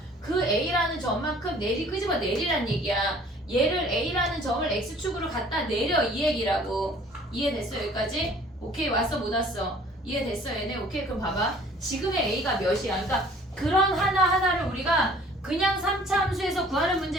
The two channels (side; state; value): both; normal; correlation 0.53